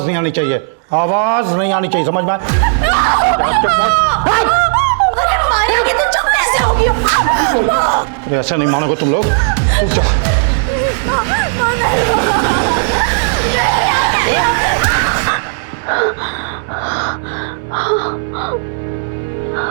नहीं आनी चाहिए, आवाज नहीं आनी चाहिए, समझ में? अरे ऐसा नहीं मानोगे तुम लोग।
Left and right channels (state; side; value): silent; left; digital silence